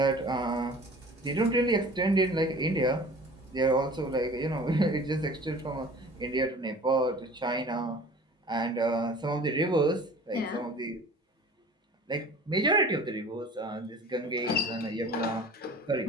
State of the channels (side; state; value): both; normal; correlation 0.44